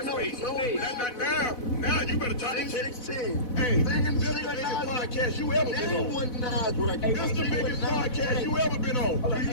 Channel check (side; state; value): right; late; 4.0 ms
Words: know page. no Now you better talk to Sing check. 16. Hey, Sing this is the biggest podcast you ever been Name on. one Nas record. This is the biggest podcast you ever been on. You